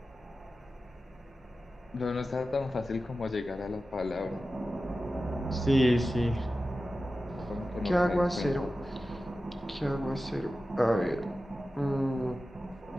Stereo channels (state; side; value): normal; both; correlation 0.94